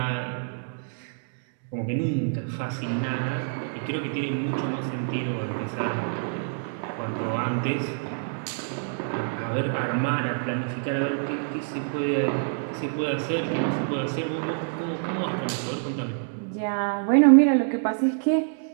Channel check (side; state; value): left; silent; digital silence